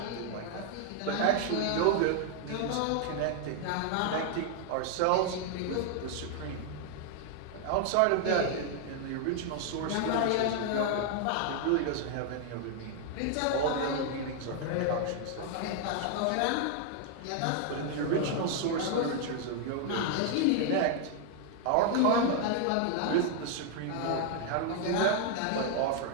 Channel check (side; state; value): both; different; correlation 0.00